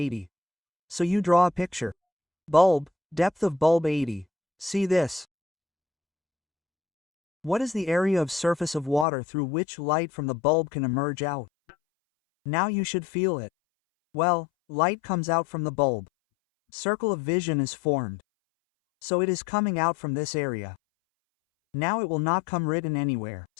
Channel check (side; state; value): right; drops out; at 9.1 s